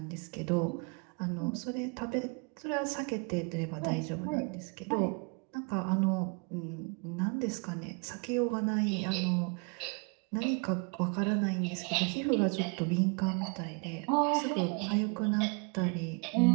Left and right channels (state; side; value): quieter; left; 33.9 dB